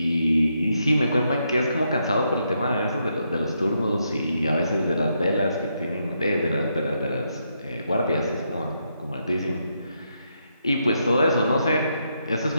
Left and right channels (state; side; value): inverted; both; correlation -0.80